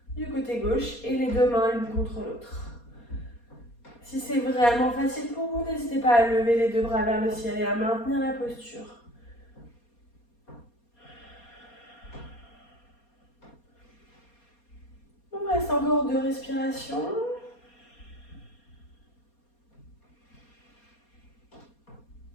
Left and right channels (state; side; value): late; right; 4.2 ms